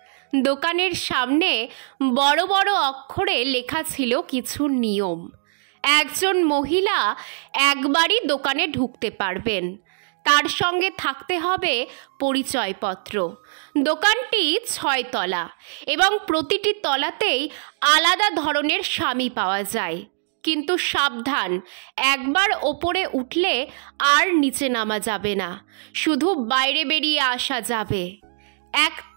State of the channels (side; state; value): left; silent; digital silence